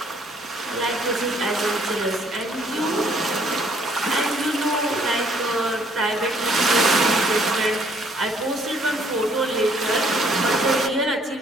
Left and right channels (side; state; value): both; normal; correlation 0.63